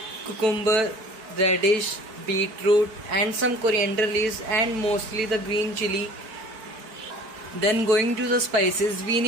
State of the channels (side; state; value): left; late; 4.5 ms